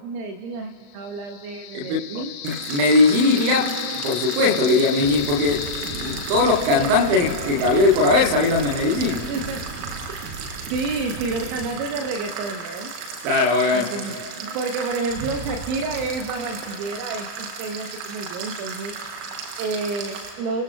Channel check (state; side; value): late; left; 35 ms